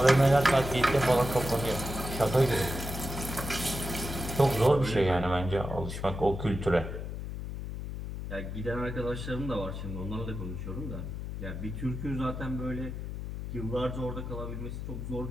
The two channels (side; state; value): left; noise; hum, 6 dB below the sound